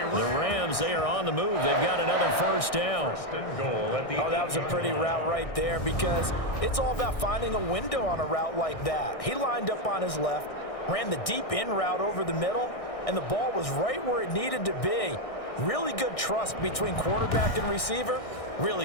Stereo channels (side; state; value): right; late; 1.6 ms